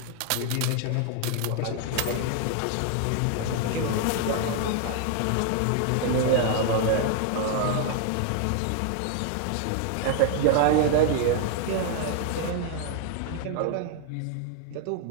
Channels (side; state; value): both; different; correlation 0.00